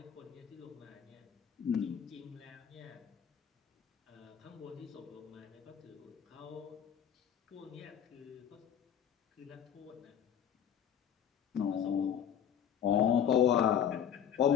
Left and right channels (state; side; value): quieter; right; 9.0 dB